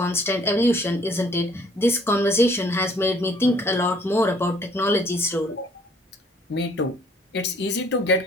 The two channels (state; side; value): normal; both; correlation 0.60